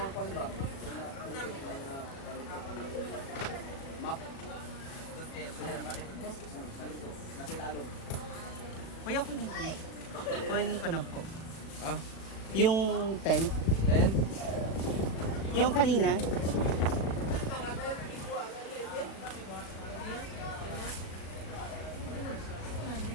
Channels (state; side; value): late; right; 37 ms